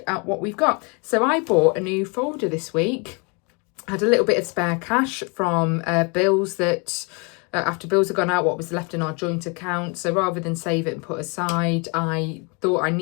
at what we've got. So I bought a new folder this week. I had a little bit of spare cash from bills that... after bills had gone out, what was left in our joint account. So rather than save it and put aside, I thought I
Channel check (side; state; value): right; quieter; 32.1 dB